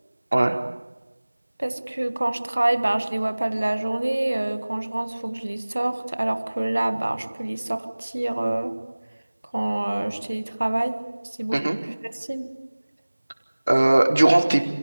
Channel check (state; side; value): inverted; both; correlation -1.00